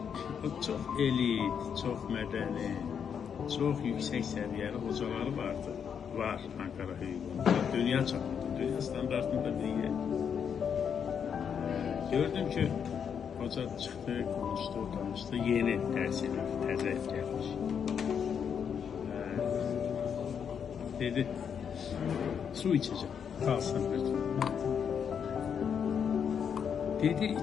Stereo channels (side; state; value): right; quieter; 7.5 dB